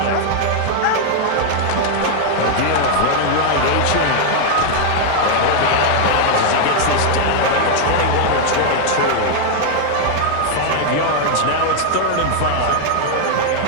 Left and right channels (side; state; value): both; different; correlation 0.00